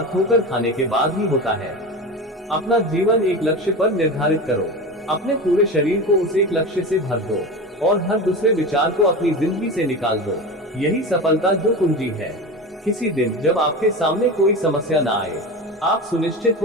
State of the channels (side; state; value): both; normal; correlation 0.27